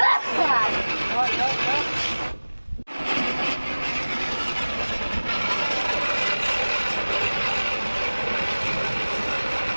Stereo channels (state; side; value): inverted; both; correlation -1.00